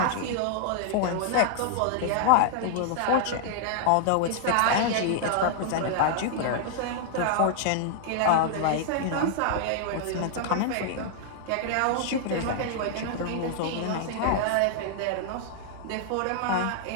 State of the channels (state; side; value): different; both; correlation -0.01